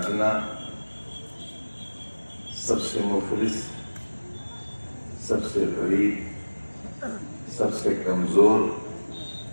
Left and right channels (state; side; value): inverted; both; correlation -1.00